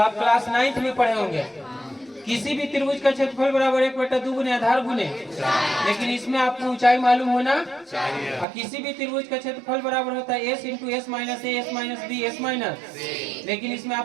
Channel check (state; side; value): drops out; left; at 8.5 s